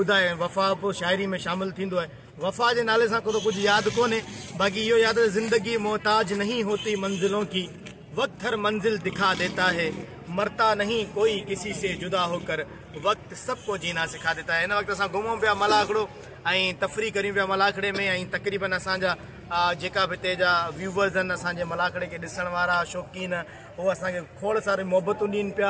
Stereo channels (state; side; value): identical; both; correlation 1.00